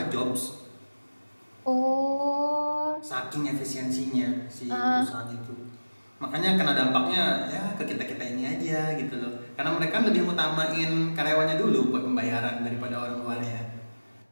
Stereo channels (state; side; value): inverted; both; correlation -1.00